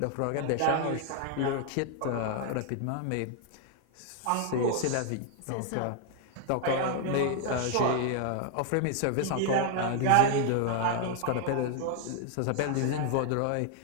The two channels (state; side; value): different; both; correlation 0.00